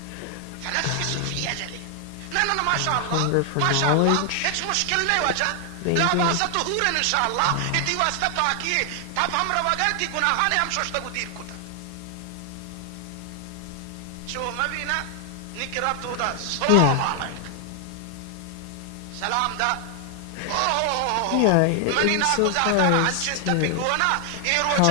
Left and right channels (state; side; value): different; both; correlation 0.00